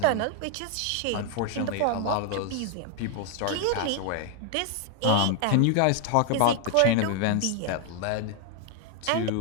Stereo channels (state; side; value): different; both; correlation 0.00